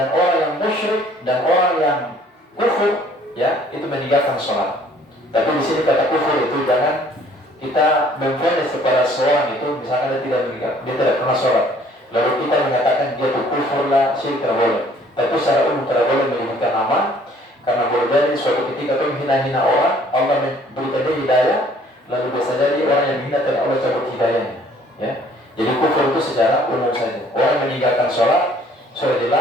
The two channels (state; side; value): normal; both; correlation 0.58